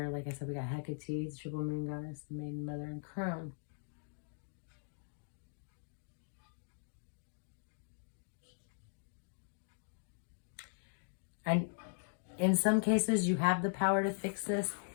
like I said, we got Hecate, triple moon goddess, the maiden mother, and crone. And in some cases, you have the power to fix this.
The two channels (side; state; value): right; silent; digital silence